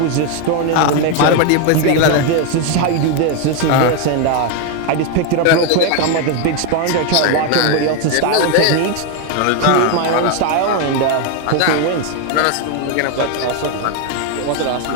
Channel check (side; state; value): both; different; correlation 0.01